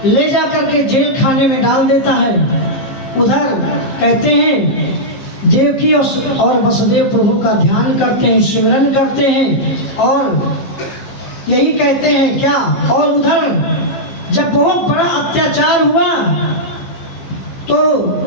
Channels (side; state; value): right; late; 15 ms